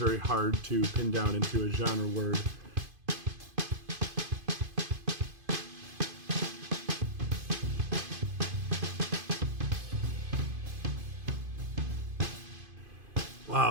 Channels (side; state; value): left; late; 2.5 ms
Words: hard to pin down into a genre word.